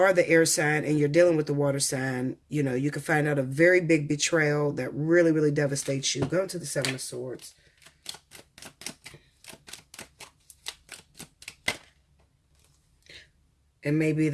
the air sign and you're dealing with the water sign, you know, you can find out a very big betrayal that really, really devastates you. Go into the Seven of Swords. It may be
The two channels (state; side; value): identical; both; correlation 1.00